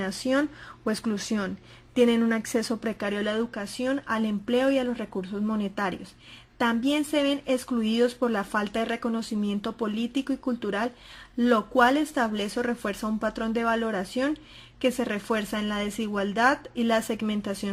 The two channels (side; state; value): both; identical; correlation 1.00